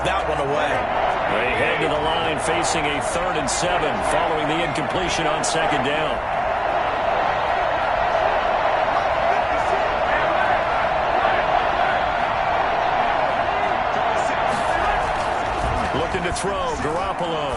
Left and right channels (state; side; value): identical; both; correlation 1.00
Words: that one away. They head to the line facing a 3rd and 7 following the incompletion on 2nd down. Looking to throw,